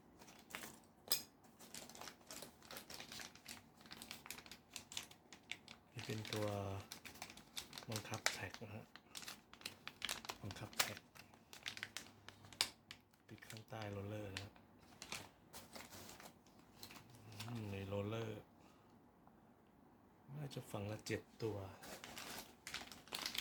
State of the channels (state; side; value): identical; both; correlation 1.00